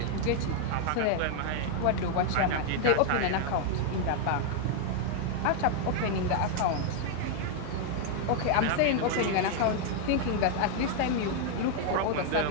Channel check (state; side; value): different; both; correlation 0.00